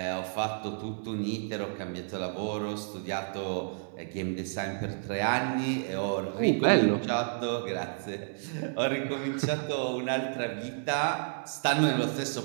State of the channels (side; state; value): left; silent; 57 dB below the other